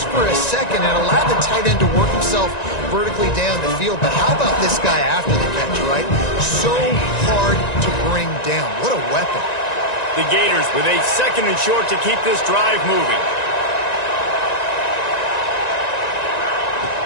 for a second and allowed the tight end to work himself vertically down the field. But how about this guy after the catch, right? So hard to bring down. What a weapon. The Gators with a 2nd and short to keep this drive moving.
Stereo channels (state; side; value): late; right; 1.9 ms